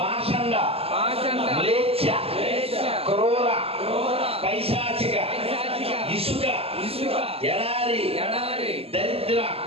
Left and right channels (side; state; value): left; late; 0.28 ms